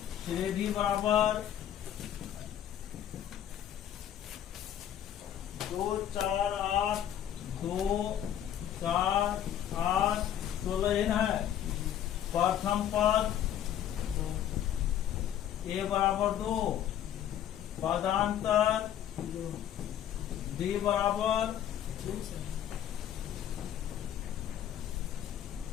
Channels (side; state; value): right; quieter; 10.6 dB